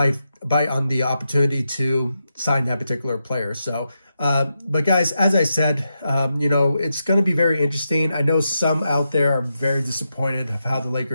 on the opportunity to sign that particular player. So, but guys, as I said, it's going to be very interesting. I know some out there are very disappointed of how the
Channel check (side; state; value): both; inverted; correlation -0.86